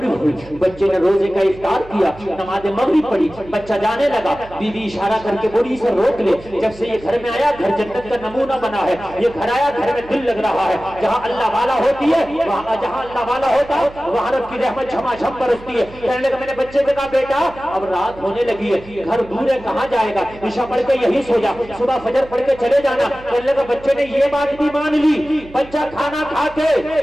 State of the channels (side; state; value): right; noise; hum, 20 dB below the sound